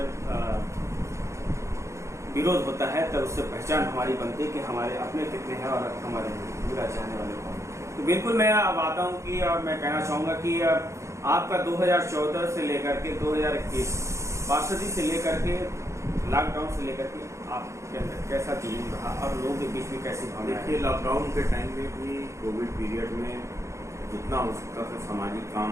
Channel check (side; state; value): left; late; 0.14 ms